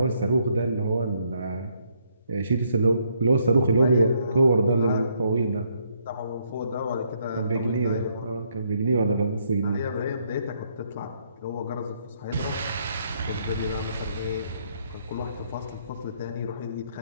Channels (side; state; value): both; inverted; correlation -0.72